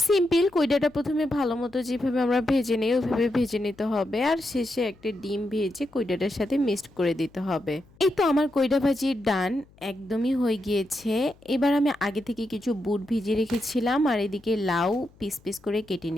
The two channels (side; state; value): left; noise; hum, 28 dB below the sound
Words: সিম্পল, কইডাটা প্রথমে ভালো মতো যেভাবে আমরা ভেজে নিই ওইভাবে ভেজে নিতে হবে, আর শেষে একটা ডিম ভেজে কইডাটার সাথে মিক্সড করে দিতে হবে। এই তো আমার কইডা ভাজির ডান একদমই হয়ে গিয়েছে। এবার আমি আগে থেকে কিছু বুট ভিজিয়ে রেখেছিলাম আর এদিকে লাউ পিস পিস করে কেটে